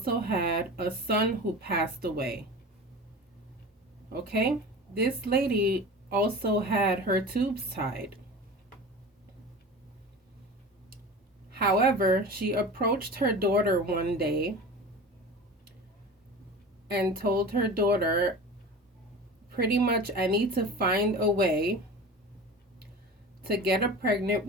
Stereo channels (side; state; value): both; normal; correlation 0.33